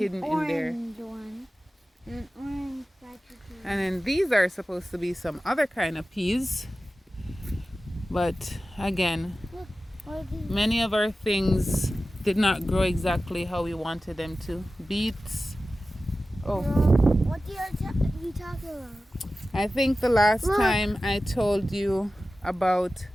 in there. One. An orange And then these are supposed to be some other kind of peas. But again, many of our things did not grow exactly how we wanted them to. Beets. Oh. What are you talking about? I think the last time I told you about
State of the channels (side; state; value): both; normal; correlation 0.95